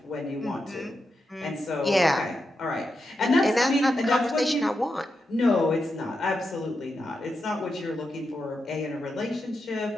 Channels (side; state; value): both; normal; correlation 0.87